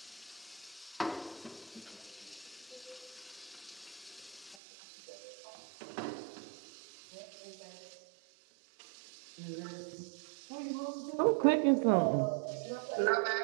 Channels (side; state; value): left; drops out; at 4.5 s